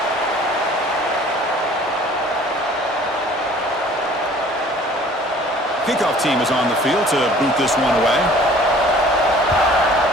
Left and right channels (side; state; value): both; normal; correlation 0.51